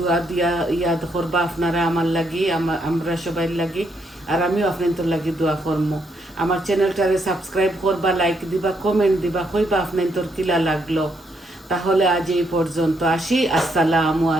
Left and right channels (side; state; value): both; normal; correlation 0.75